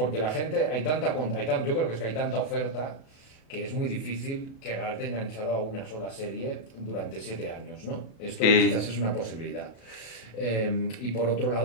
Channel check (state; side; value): late; right; 36 ms